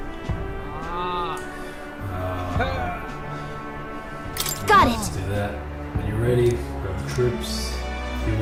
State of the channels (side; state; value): both; identical; correlation 1.00